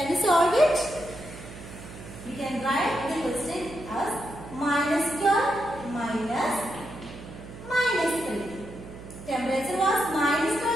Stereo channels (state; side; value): noise; right; hum, 14 dB below the sound